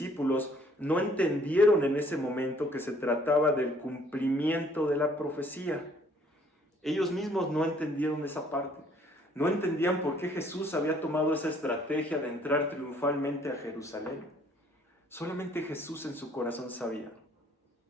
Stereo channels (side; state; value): both; normal; correlation 0.61